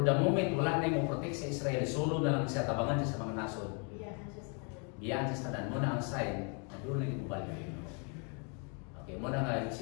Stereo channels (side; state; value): right; quieter; 37.5 dB